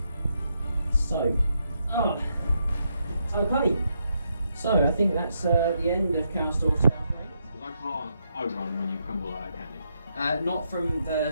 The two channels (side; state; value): both; inverted; correlation -0.79